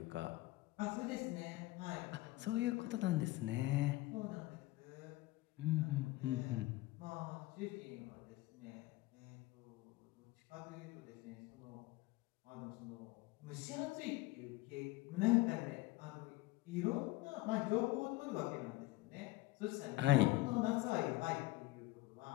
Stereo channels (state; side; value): quieter; right; 19.1 dB